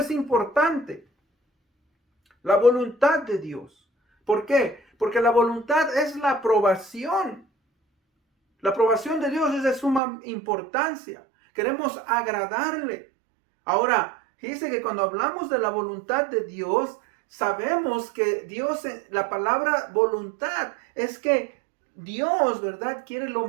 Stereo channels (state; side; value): drops out; left; at 10.0 s